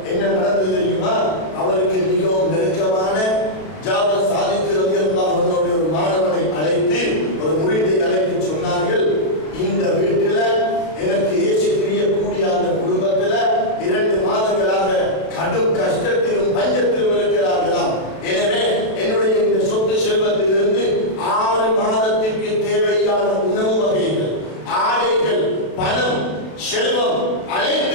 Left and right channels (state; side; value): late; right; 32 ms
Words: என்ன நடந்தது தெரியுமா? அவருக்கு மிகவும் நெருக்கமான ஜாபர் சாதிக் ரலியல்லாஹு அன்ஹு ஒரு மாணவனை அழைத்து, ஒரு முரீதை அழைத்து சொன்னார்கள், இந்த வீட்டில எனக்கு ஏசி பிரியக்கூடிய அந்த குடும்பத்துல 2 மாதங்களாக கடும் கஷ்டத்திலும் பஞ்சத்திலும் இருக்கிறார்களாம். எனவே என்னுடைய இந்த சொத்து செல்வத்திலிருந்து 6 மாதத்திற்கு தேவையான உணவு வகைகள், ஆடைகள், பணம், செல்வம்